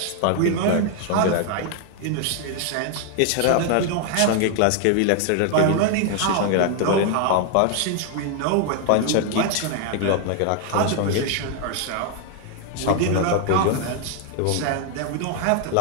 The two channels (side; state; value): both; different; correlation 0.00